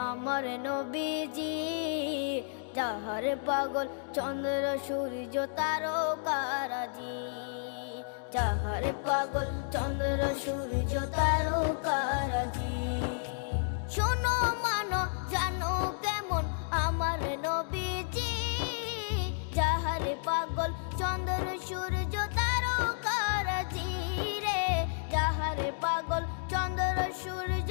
আমার নবীজি, যাহার পাগল চন্দ্র সূর্য তারকারাজি, যাহার পাগল চন্দ্র সূর্য তারকারাজি। শোনো মানো জানো কেমন আমার নবীজি, যাহার পাগল চন্দ্র সূর্য তারকারাজি রে, যাহার পাগল চন্দ্র সূর্য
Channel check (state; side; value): silent; right; digital silence